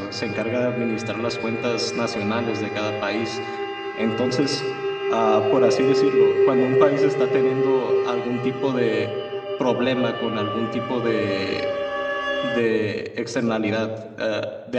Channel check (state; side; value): identical; both; correlation 1.00